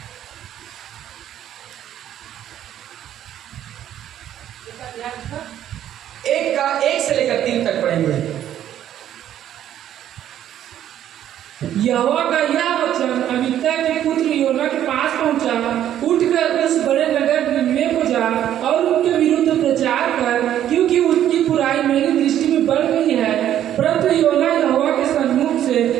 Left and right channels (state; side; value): quieter; left; 11.2 dB